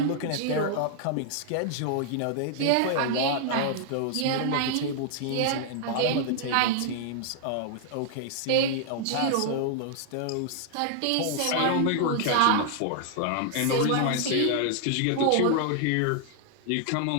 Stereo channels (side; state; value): both; different; correlation -0.01